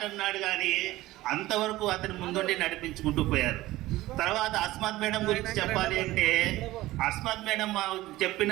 అన్నాడు కానీ అంతవరకు అతని ముందుండి నడిపించుకుంటూ పోయారు. తర్వాత అస్మత్ మేడం గురించి చెప్పాలి అంటే అస్మత్ మేడం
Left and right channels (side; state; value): left; quieter; 17.2 dB